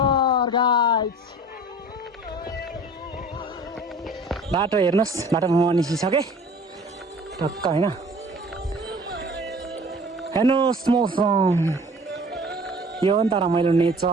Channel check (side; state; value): both; normal; correlation 0.46